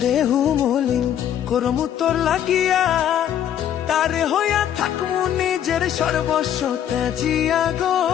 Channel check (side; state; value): right; quieter; 10.2 dB